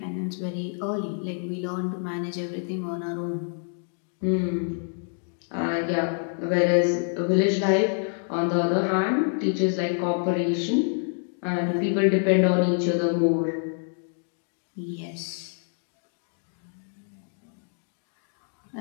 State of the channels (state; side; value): silent; right; 58 dB below the other